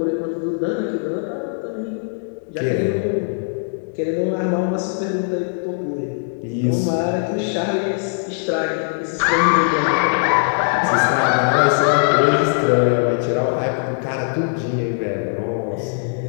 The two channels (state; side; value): silent; right; digital silence